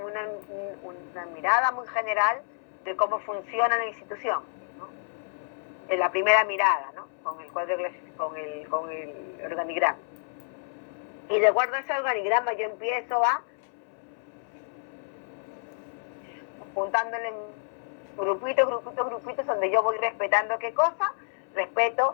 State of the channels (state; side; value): silent; right; 59 dB below the other